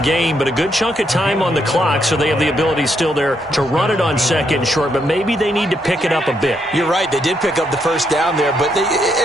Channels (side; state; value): both; normal; correlation 0.77